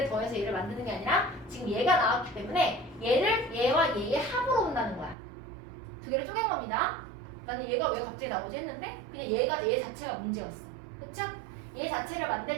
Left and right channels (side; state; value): left; drops out; at 5.2 s